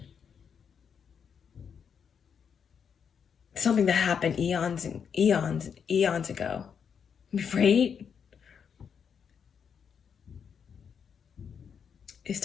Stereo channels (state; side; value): quieter; right; 7.1 dB